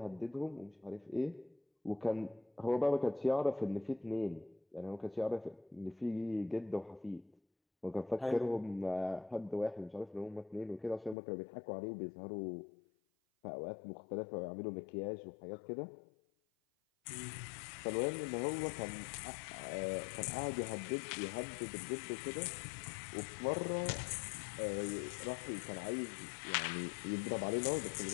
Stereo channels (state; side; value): drops out; right; at 11.2 s